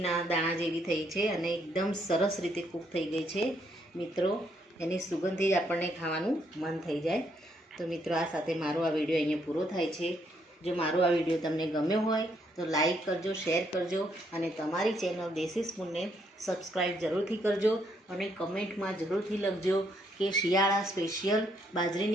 દાણા જેવી થઈ છે અને એકદમ સરસ રીતે કૂક થઈ ગઈ છે મિત્રો. એની સુગંધથી જ આપણને ખાવાનું મન થઈ જાય. તો મિત્રો આ સાથે મારો આ વિડીયો અહીંયા પૂરો થાય છે. જો મારો આ વિડીયો તમને ગમ્યો હોય તો લાઈક કરજો, શેર કરજો અને તમારી ચેનલ દેશી સ્પૂનને સબસ્ક્રાઈબ જરૂરથી કરજો અને કમેન્ટમાં જરૂરથી લખજો કે શિયાળા સ્પેશિયલ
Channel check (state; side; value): normal; both; correlation 0.73